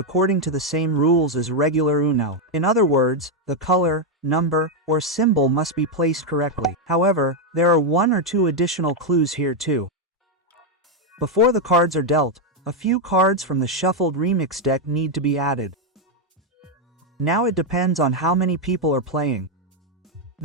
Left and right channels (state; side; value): normal; both; correlation 0.02